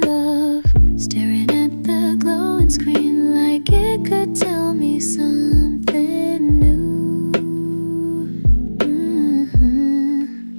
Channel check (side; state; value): both; inverted; correlation -1.00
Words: love, staring at the glowing screen like it could tell me something new.